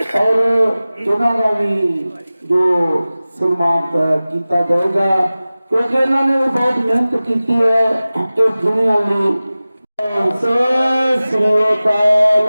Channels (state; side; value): inverted; both; correlation -0.97